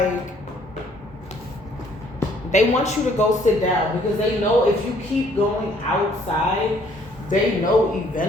they want you to go sit down because they know if you keep going outside, they know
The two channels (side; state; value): both; normal; correlation 0.62